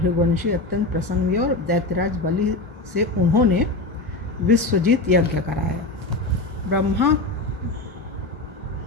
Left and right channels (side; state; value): right; quieter; 3.1 dB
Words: अत्यंत प्रसन्न हुए और दैत्यराज बलि से उन्होंने विश्वजीत यज्ञ कराया।